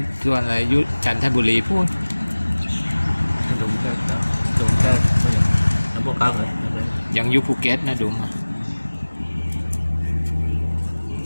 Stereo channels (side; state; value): both; inverted; correlation -1.00